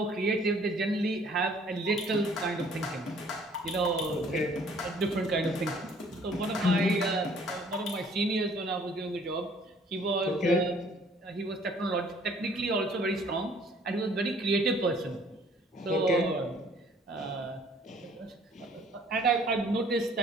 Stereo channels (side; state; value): both; normal; correlation 0.58